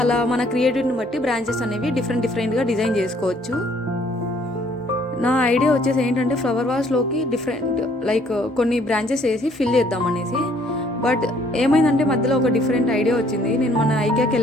అలా మన క్రియేటివిటీని బట్టి బ్రాంచెస్ అనేవి డిఫరెంట్గా డిజైన్ చేసుకోవచ్చు. నా ఐడియా వచ్చేసి ఏంటంటే ఫ్లవర్ వాజ్లోకి డిఫరెంట్ లైక్ కొన్ని బ్రాంచెస్ వేసి ఫిల్ చేద్దాం అనేసి. బట్ ఏమైందంటే మధ్యలో ఒక డిఫరెంట్ ఐడియా వచ్చింది. నేను మన ఐకియాకి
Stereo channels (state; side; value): normal; both; correlation 0.62